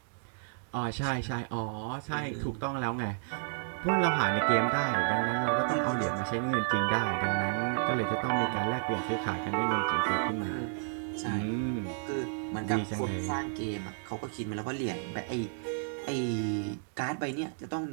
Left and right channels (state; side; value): silent; left; digital silence